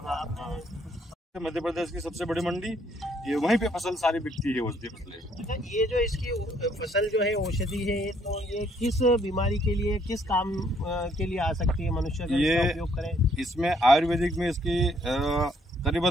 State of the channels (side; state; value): both; normal; correlation 0.67